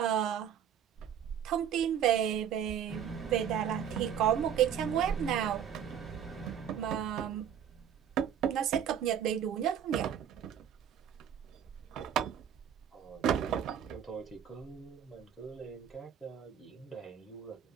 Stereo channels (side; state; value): left; quieter; 9.0 dB